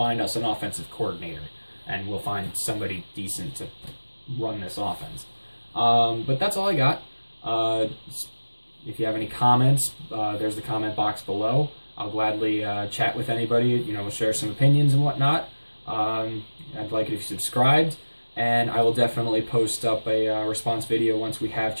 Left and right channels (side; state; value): both; inverted; correlation -1.00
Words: us an offensive coordinator, and we'll find somebody decent to run this offense. But that's all I got. If you have any comments, there's the comment box below. I'll gladly chat with anybody, share some opinions and whatnot. I'd like it if you subscribed, and I will definitely post up a response video once we have